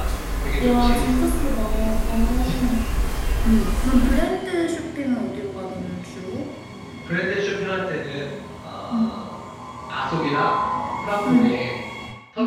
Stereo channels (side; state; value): both; identical; correlation 1.00